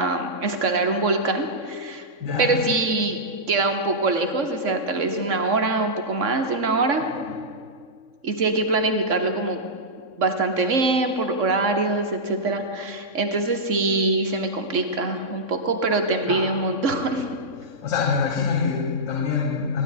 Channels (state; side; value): late; left; 3.6 ms